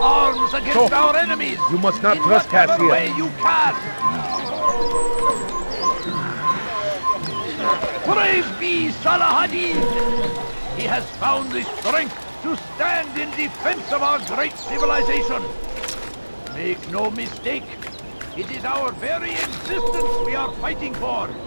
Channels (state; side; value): inverted; both; correlation -1.00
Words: arms against our enemies. You must not in trespass whatever here. way you can. Praise be Salahadin. He has found the strength to stand in defense of our great civilization. Make no mistake. It is our very existence we are fighting for.